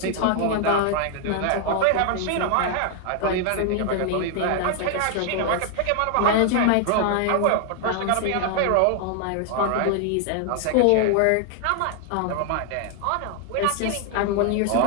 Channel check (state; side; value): different; both; correlation 0.00